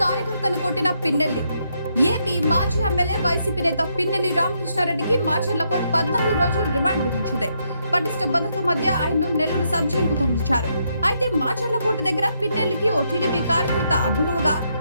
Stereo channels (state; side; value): inverted; both; correlation -0.77